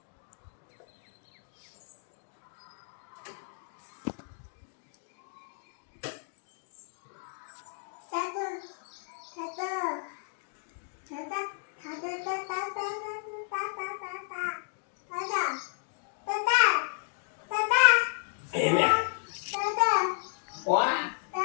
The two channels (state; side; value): silent; right; digital silence